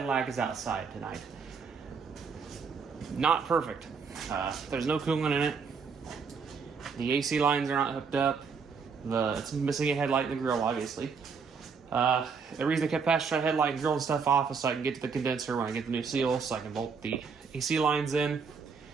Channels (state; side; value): quieter; left; 5.6 dB